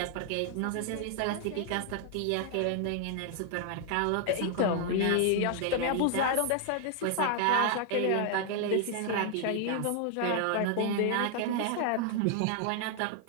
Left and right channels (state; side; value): different; both; correlation 0.00